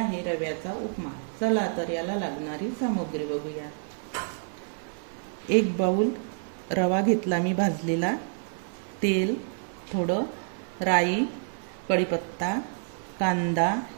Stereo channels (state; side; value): silent; left; digital silence